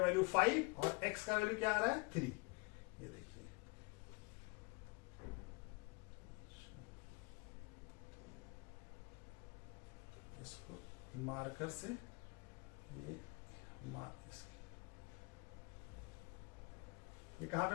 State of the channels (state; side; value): quieter; right; 29.3 dB